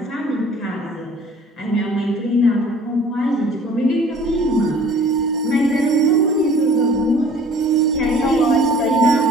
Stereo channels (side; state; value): both; normal; correlation 0.50